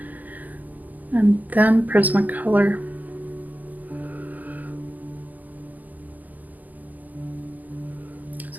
And then Prismacolor.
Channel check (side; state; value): left; late; 0.082 ms